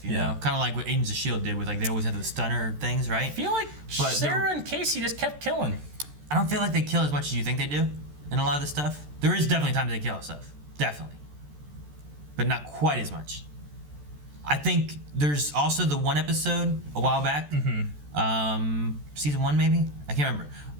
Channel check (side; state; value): left; late; 14 ms